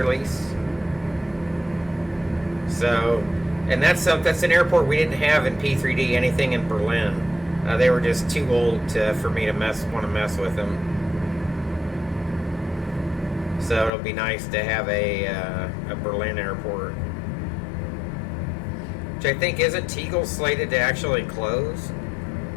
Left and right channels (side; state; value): right; drops out; at 13.9 s